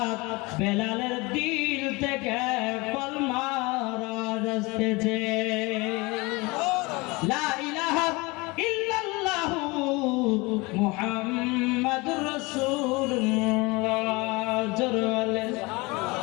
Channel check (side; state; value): right; quieter; 24.8 dB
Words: বেলালের দিল থেকে কলমা আসতেছে। লা ইলাহা ইল্লাল্লাহু মুহাম্মাদুর রাসূলুল্লাহ। জোরে